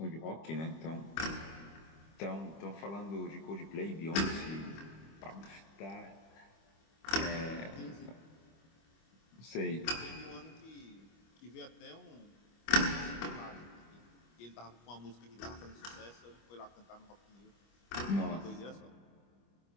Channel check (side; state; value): right; late; 25 ms